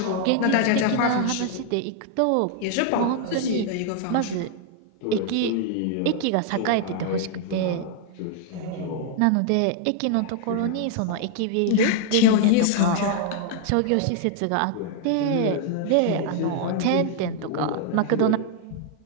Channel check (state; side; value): different; both; correlation 0.00